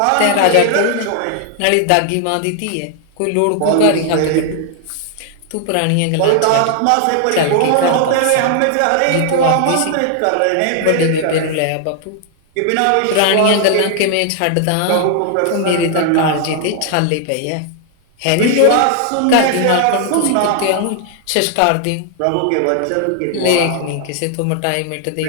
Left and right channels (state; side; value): different; both; correlation 0.00